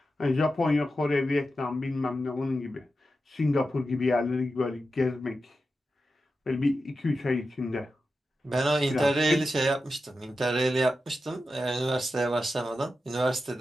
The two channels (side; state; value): both; normal; correlation 0.91